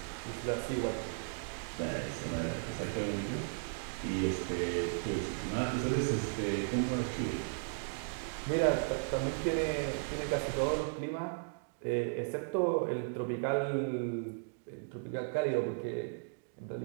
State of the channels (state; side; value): silent; left; digital silence